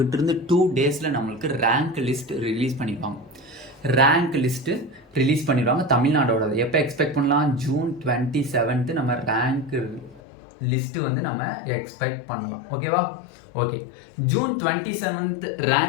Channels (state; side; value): drops out; right; at 10.2 s